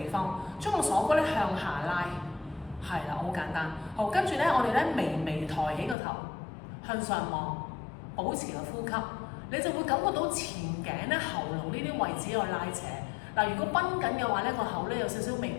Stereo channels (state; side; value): drops out; right; at 6.0 s